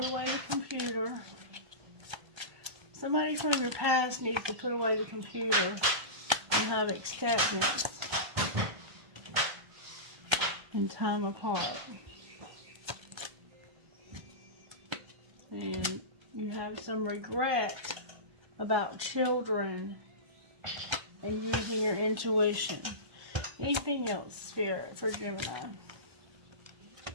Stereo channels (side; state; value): left; late; 1.3 ms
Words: away the computer. Somebody from your past needs to put away the computer and have acceptance and time apart. And you have some regret about children and using your intuition. Anything else, Spirit, for Gemini?